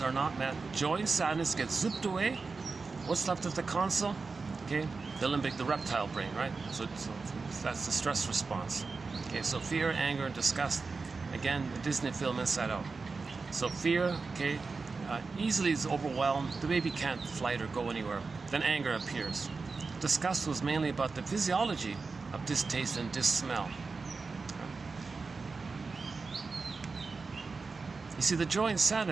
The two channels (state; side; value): quieter; left; 4.3 dB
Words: joy and sadness get zipped away. What's left at the console? Okay, the reptile brain, right? So that's the stress response. Okay, so fear, anger, and disgust. Again, the Disney film Inside Out. So fear, okay, easily is overwhelmed. The baby can't flight or go anywhere. Then anger appears. Disgust was mainly about the physiology of distaste and dis-smell. You see, the joy and